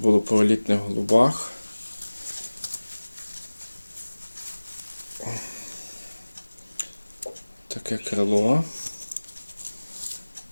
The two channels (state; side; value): inverted; both; correlation -1.00